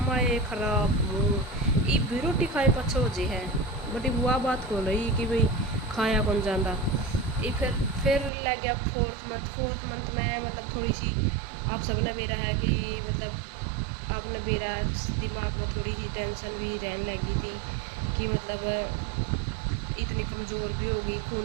ये खराब मुँह। ये भी रोटी खाए पछो जे है बटी बुआ बात को रही कि भाई खाया कौन जाता। ये फिर लग गया 4th मंथ में, मतलब थोड़ी सी आप सबने बेरा है कि मतलब आपने बेरा दिमाग में थोड़ी सी टेंशन भी रहने लगी थी कि मतलब इतनी कमज़ोर भी होगी,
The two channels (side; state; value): left; drops out; at 8.3 s